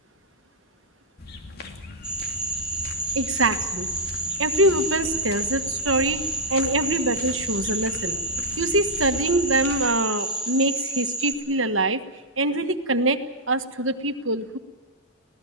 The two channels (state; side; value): normal; both; correlation -0.08